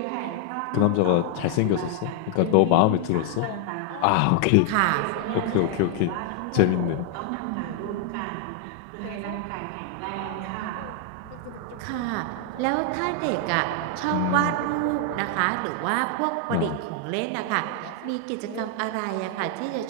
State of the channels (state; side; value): different; both; correlation 0.00